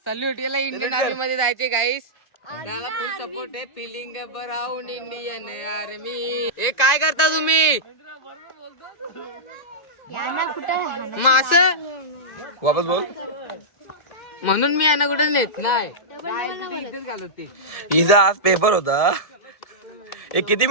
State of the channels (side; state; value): right; late; 2.0 ms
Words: सल्यूट. याला इंडियन आर्मी मध्ये जायचे गाईस. त्याला फुल सपोर्ट आहे. Feeling around Indian army. हे काय करता तुम्ही? मास वापस बोल. म्हणून मी यांना कुठे नेत नाही. हिचा आज पेपर होता. एक किती